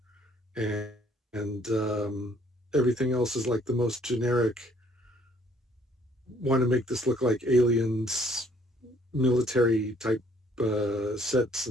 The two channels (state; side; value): normal; both; correlation 0.62